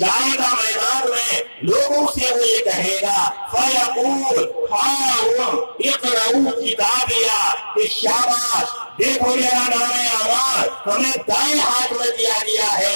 گا میدان میں لوگوں سے وہ یہ کہے گا فَيَقُولُ هَاؤُمُ اقْرَءُوا كِتَابِيَهْ, کہ شاباش دیکھو میرا نامِ اعمال ہمیں دائیں ہاتھ میں دیا گیا ہے,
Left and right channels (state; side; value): inverted; both; correlation -1.00